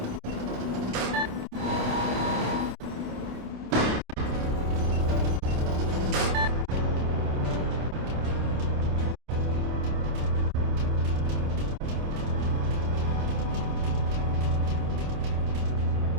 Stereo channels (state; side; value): late; left; 27 ms